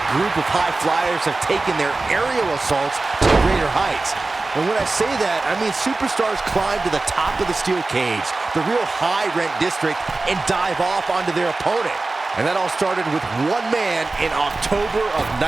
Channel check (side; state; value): left; quieter; 3.4 dB